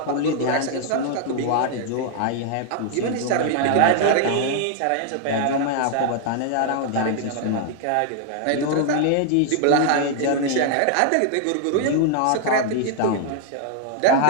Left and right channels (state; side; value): different; both; correlation 0.00